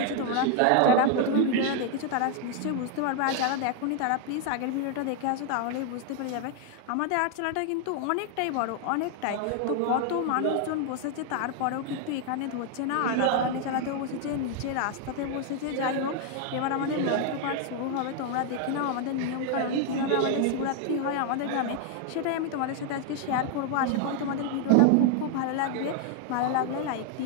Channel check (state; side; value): different; both; correlation 0.00